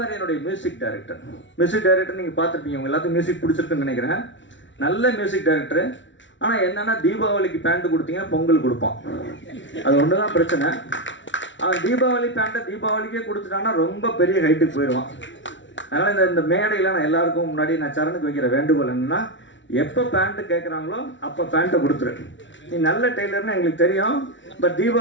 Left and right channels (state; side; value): late; right; 0.55 ms